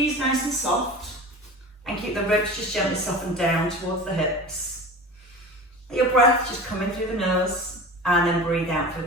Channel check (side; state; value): both; normal; correlation 0.34